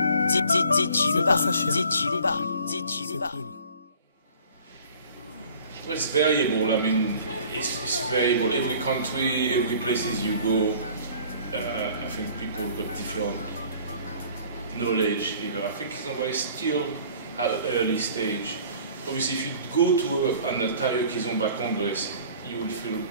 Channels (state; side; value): inverted; both; correlation -0.50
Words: C'est pas ça, cher. C'est cool. Well, it's variable. I mean, it's variable. Every country, every places you go, I think people got different knowledge. You know, I think Kizomba is still at an early stage. Obviously, if you go to an entire Kizomba Congress, you will feel